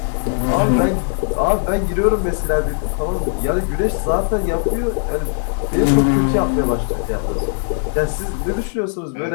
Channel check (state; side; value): silent; right; digital silence